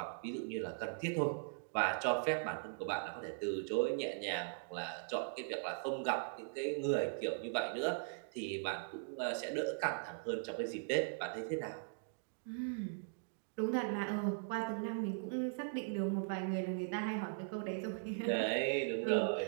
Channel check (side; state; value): left; silent; digital silence